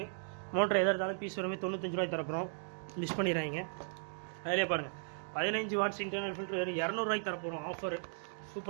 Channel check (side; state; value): left; silent; digital silence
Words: மோட்டர் எதாக இருந்தாலும் பீஸ் வரமே 95 ரூபாய்க்கு தரப்போகிறோம். மிஸ் பண்ணிடுறாங்க. அதிலே பாருங்கள், 15 வாட்ஸ் இன்டர்னல் ஃபில்டர் வெறும் 200 ரூபாய்க்கு தரப்போகிறோம். ஆஃபரு,